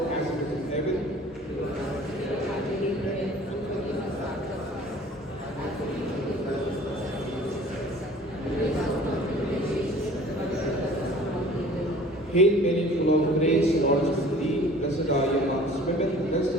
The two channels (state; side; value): normal; both; correlation 0.48